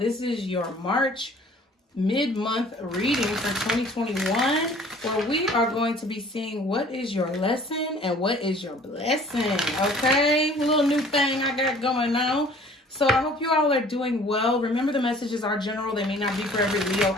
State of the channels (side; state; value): both; normal; correlation 0.51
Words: is your March mid-month reading for 2021, where we are going to be seeing what is your lesson and what is your blessing. Okay, a little new thing I got going on. So I hope you all are doing well. Remember, the messages are general. They may not be for every Leo